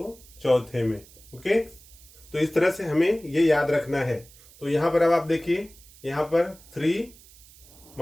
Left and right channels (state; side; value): noise; right; hiss, 23 dB below the sound